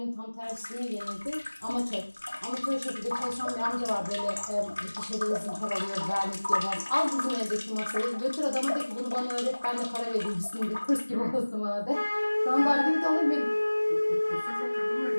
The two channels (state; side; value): inverted; both; correlation -1.00